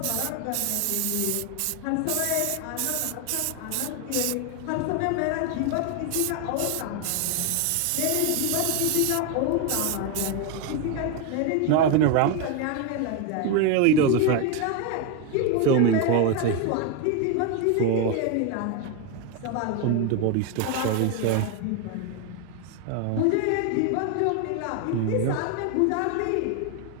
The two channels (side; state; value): both; different; correlation 0.01